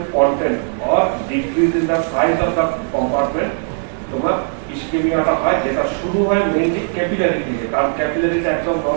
content or decrease in the size of the compartment তোমার ইসকেমিয়াটা হয়, যেটা শুরু হয় মেইনলি ক্যাপিলারি থেকে, কারণ ক্যাপিলারিটা একদম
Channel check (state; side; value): silent; left; digital silence